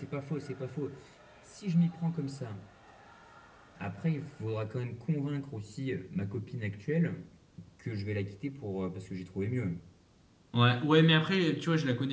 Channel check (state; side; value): identical; both; correlation 1.00